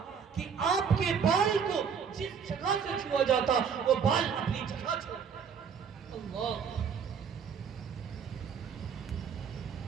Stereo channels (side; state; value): left; quieter; 6.8 dB